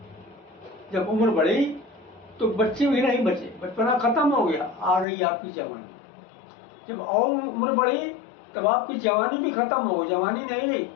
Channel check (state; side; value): drops out; right; at 5.1 s